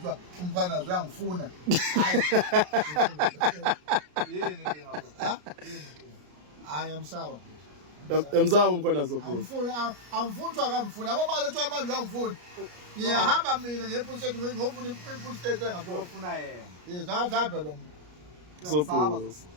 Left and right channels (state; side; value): late; left; 33 ms